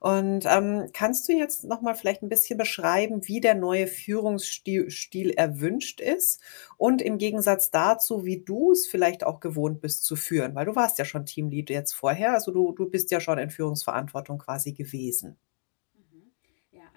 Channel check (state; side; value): silent; right; digital silence